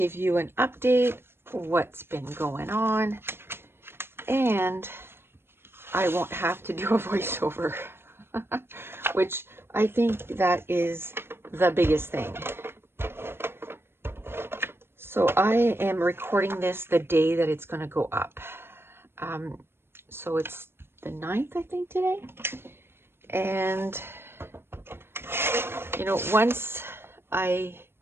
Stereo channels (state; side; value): late; left; 0.11 ms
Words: you an update, what's been going on, and I won't have to do a voiceover, which I think that is the biggest thing. So I am recording this the day that it's going to go up. So it's the 9th, I think, today. And, you know, once I